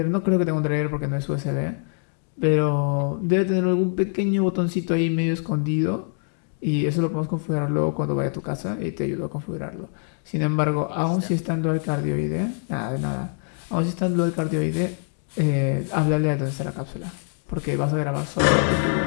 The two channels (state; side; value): silent; right; digital silence